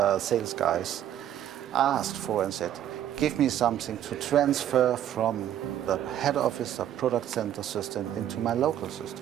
guys asked for and said, give me something to transfer from the head office or product center system into my local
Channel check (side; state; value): left; quieter; 11.0 dB